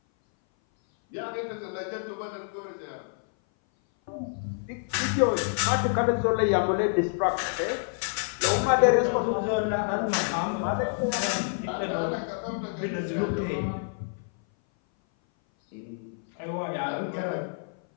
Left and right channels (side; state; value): right; silent; 58 dB below the other